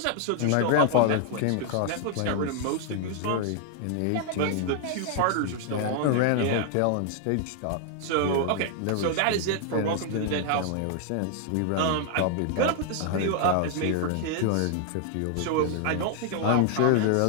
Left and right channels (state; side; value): different; both; correlation 0.00